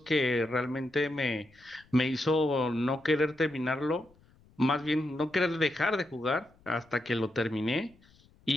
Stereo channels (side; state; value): left; noise; rumble, 30 dB below the sound